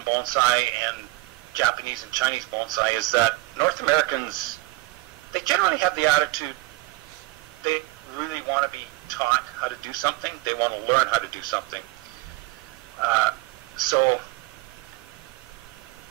bonsai and Japanese and Chinese bonsai is that North Americans, they generally have the attitude they really want to be taught how to do something. They want to learn how to do something. So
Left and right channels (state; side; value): quieter; left; 20.2 dB